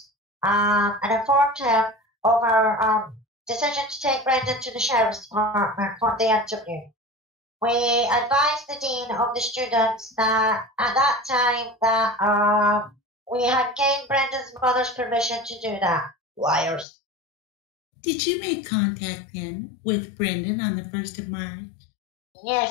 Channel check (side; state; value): right; drops out; at 16.9 s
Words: and informed him of our decision to take Brendan to the sheriff's department for the interview. We advised the dean of the students that at that time that we had gained Brendan's mother's permission to do that. Liars. Did you make contact then with Brendan on the 1st of March?